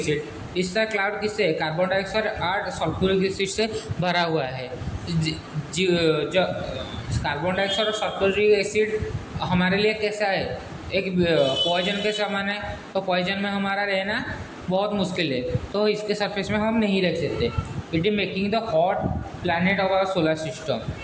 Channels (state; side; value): identical; both; correlation 1.00